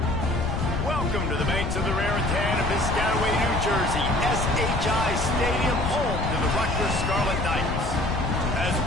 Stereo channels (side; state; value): left; noise; rumble, 3 dB below the sound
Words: Welcome to the banks of the Raritan of Piscataway, New Jersey, SHI Stadium, home to the Rutgers Scarlet Knights. As